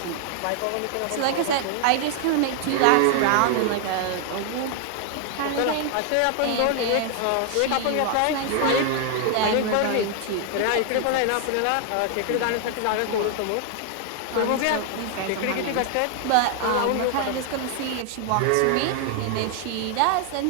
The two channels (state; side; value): different; both; correlation 0.00